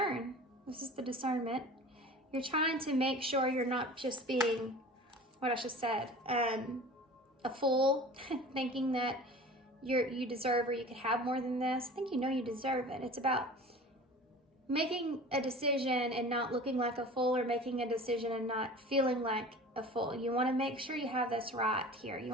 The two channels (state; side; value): normal; both; correlation 0.40